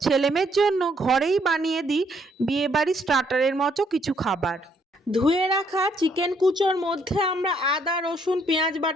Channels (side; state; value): both; normal; correlation 0.70